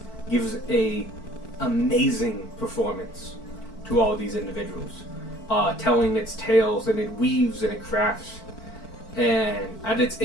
gives a amazing performance to all of these individuals, telling its tales, and it weaves and it crafts. And at its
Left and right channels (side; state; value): right; late; 4.5 ms